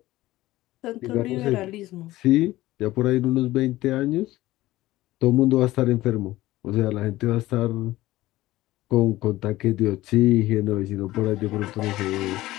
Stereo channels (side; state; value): right; quieter; 16.9 dB